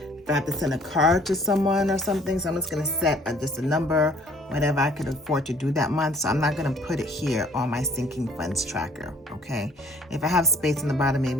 If I have to send a card to someone or something, so I'm just gonna set just a number, whatever I could afford to do that month. So I'm not gonna put it here on my sinking funds tracker, okay? If I have space in the bottom,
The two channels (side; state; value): both; normal; correlation 0.57